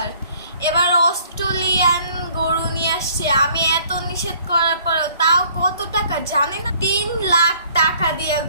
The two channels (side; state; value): both; inverted; correlation -0.58